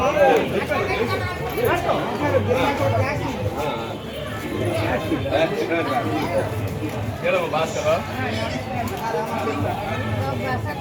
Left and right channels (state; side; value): identical; both; correlation 1.00